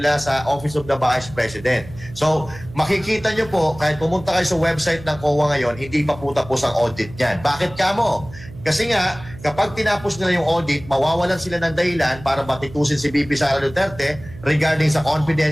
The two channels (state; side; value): noise; right; hum, 17 dB below the sound